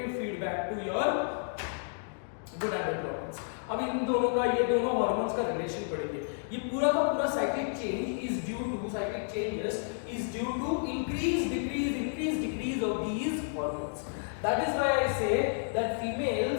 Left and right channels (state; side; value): silent; right; digital silence